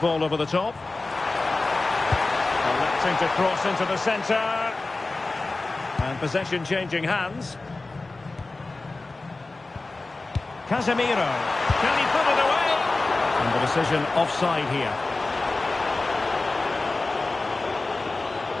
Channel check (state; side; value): quieter; right; 3.3 dB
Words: over the top. Electing to cross into the centre. And possession changing hands. Casemiro. Can he put it away? And the decision offside here.